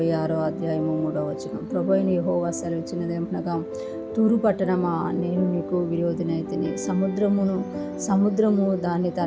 అధ్యాయము 3వ వచనం. ప్రభువైన యెహోవా సెలవిచ్చినదేమనగా, తూరు పట్టణమా, నేను నీకు విరోధినైతిని. సముద్రము దాని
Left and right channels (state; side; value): identical; both; correlation 1.00